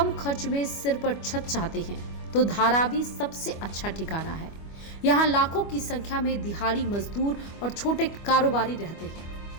खर्च में सिर पर छत चाहते हैं तो धारावी सबसे अच्छा ठिकाना है। यहाँ लाखों की संख्या में दिहाड़ी मजदूर और छोटे कारोबारी रहते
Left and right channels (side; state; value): right; late; 25 ms